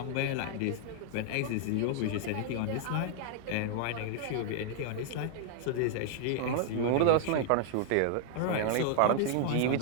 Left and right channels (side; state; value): both; different; correlation -0.01